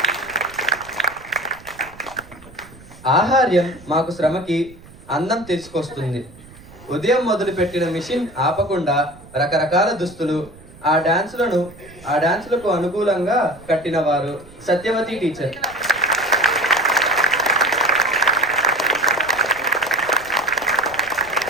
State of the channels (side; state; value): right; noise; rumble, 21 dB below the sound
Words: ఆహార్యం మాకు శ్రమకి అందం తీసుకొస్తుంది. ఉదయం మొదలుపెట్టిన మిషన్ ఆపకుండా రకరకాల దుస్తులు, ఆ డాన్సులకు అనుకూలంగా కట్టిన వారు సత్యవతి టీచర్.